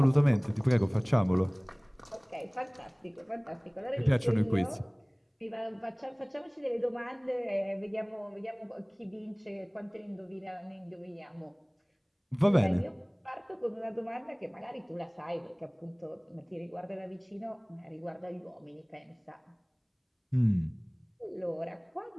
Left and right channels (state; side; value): identical; both; correlation 1.00